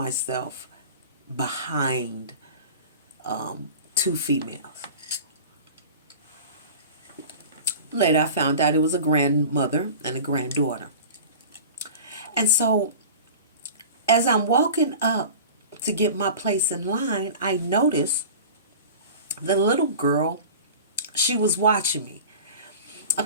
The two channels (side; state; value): both; inverted; correlation -0.37